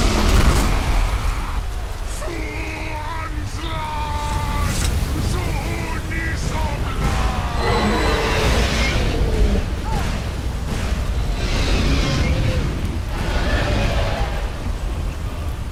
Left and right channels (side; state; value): both; identical; correlation 1.00